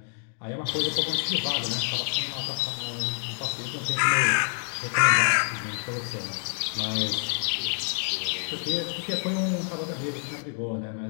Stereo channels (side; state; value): right; silent; 57 dB below the other